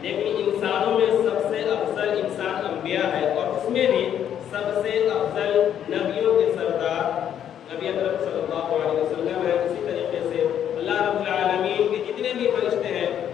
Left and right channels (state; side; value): quieter; right; 9.7 dB